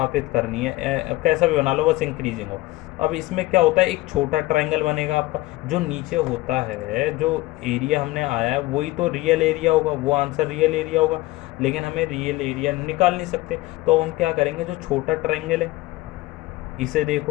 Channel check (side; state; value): right; quieter; 19.2 dB